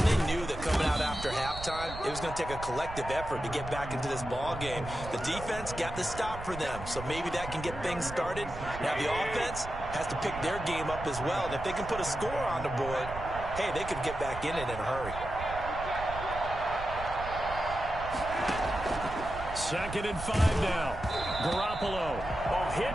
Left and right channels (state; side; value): noise; right; rumble, 11 dB below the sound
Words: they knew that coming out after halftime, it was going to take a collective effort to get back into this ball game. The defense got the stop for them, so maybe that can get things started. Now the offense has to pick their game up as well. And if they can put a score on the board, hey, they could get back in it in a hurry. Second and 5 now. Garoppolo. A hit